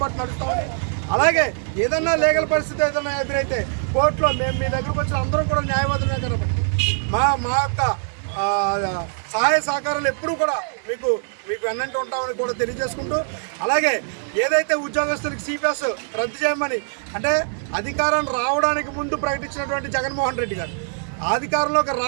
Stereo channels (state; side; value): silent; left; 64 dB below the other